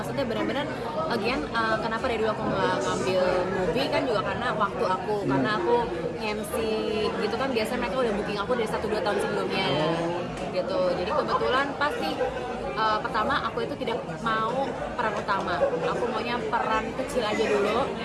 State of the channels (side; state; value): both; identical; correlation 1.00